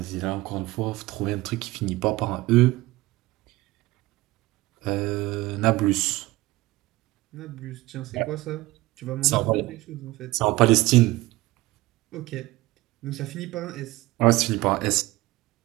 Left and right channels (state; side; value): quieter; left; 19.4 dB